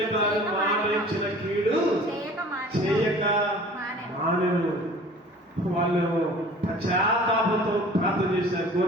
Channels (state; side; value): normal; both; correlation 0.46